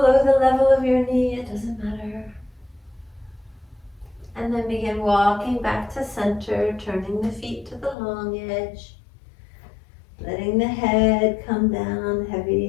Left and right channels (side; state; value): right; drops out; at 8.0 s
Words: the level of your knee, it doesn't matter. And then begin walking back to center, turning the feet to the long edge. Letting the head come down